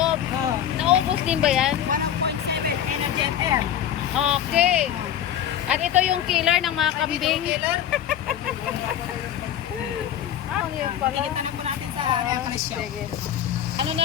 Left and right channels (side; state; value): right; quieter; 10.2 dB